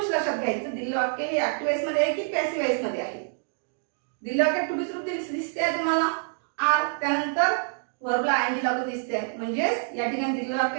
लक्षात घ्यायचं. दिलेलं वाक्य हे ऍक्टिव्ह वॉइस मध्ये आहे की पॅसिव्ह वॉइस मध्ये आहे? दिलेलं वाक्य टू बी रूप दिसते आहे तुम्हाला आर, त्यानंतर व्हर्बला आयएनजी लागून दिसते आहे, म्हणजेच या ठिकाणी दिलेलं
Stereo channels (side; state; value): left; silent; 60 dB below the other